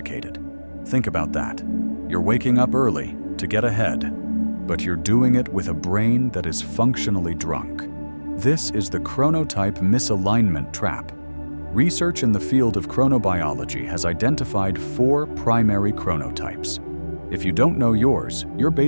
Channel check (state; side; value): inverted; both; correlation -1.00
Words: Think about that. You're waking up early to get ahead, but you're doing it with a brain that is functionally drunk. This is the chronotype misalignment trap. Research in the field of chronobiology has identified 4 primary chronotypes. If you don't know yours, you're